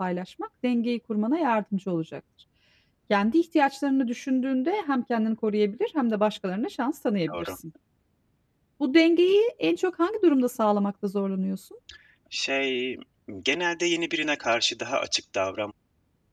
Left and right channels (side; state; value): both; identical; correlation 1.00